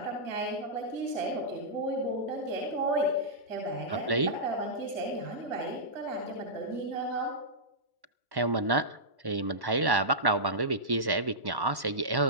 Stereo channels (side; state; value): left; late; 1.1 ms